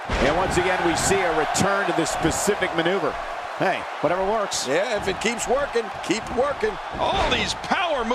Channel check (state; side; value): identical; both; correlation 1.00